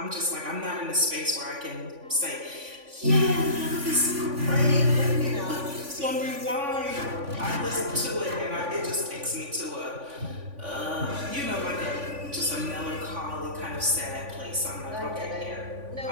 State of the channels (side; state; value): left; late; 3.5 ms